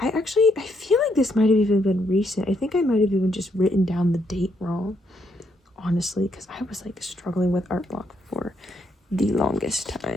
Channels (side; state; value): both; normal; correlation 0.74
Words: feel like this might have even been recent. I think I might have even just written down the date wrong, honestly, because I was like struggling with art block for the longest